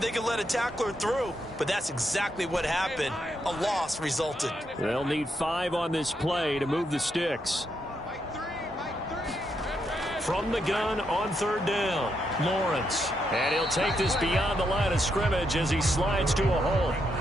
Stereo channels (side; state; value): both; normal; correlation 0.80